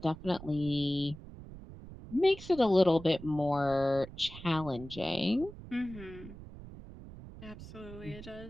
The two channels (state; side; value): noise; right; rumble, 15 dB below the sound